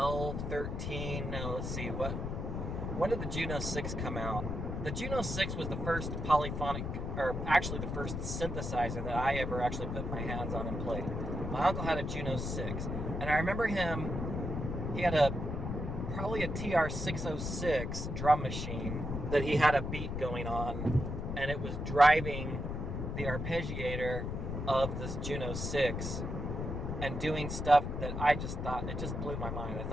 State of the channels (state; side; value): noise; left; rumble, 3 dB below the sound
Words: 13, no, let's see, when did the Juno 6 come out? The Juno 6 was the first polyphonic, or actually the first synthesizer that I ever actually put my hands on and played. My uncle had a Juno 6, and I remember he had probably a TR-606 drum machine that he had a beat going on, and it was driving the arpeggiator of this Juno 6 and doing stuff that I just thought, it just blew my mind. I